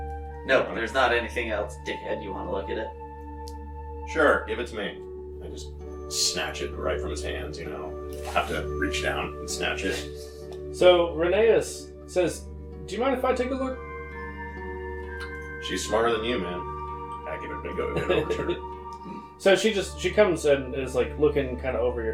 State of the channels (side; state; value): both; identical; correlation 1.00